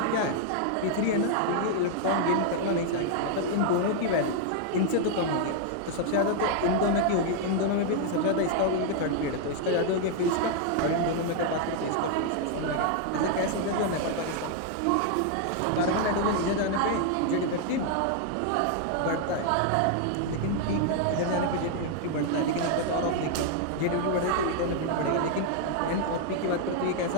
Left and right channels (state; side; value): different; both; correlation 0.00